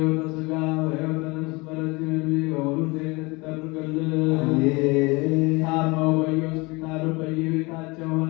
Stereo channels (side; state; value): right; quieter; 25.6 dB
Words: ሥጋ በሕይወተ ነፍስ በረጅም ዕድሜ በሙሉ ጤንነት ይጠብቅልን። ታመው በየሆስፒታሉ በየቤታቸው